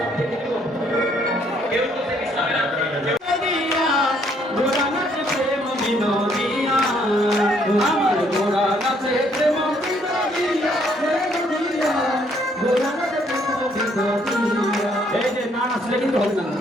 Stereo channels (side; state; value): both; normal; correlation 0.67